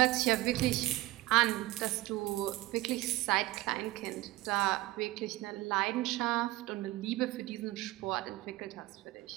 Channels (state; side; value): quieter; left; 18.3 dB